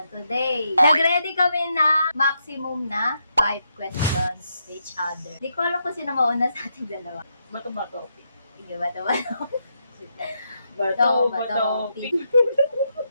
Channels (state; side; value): inverted; both; correlation -0.81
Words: today. Nag-ready kami na maximum na 5 questions to each other. Di ko alam kung sino mauna sa ating dalawa. Bato-bato. Sige, bato-bato. Bato-bato.